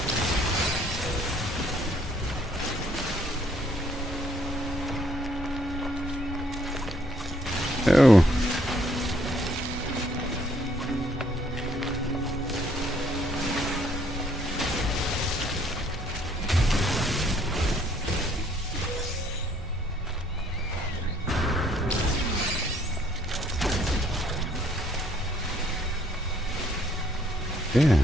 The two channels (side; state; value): both; normal; correlation 0.65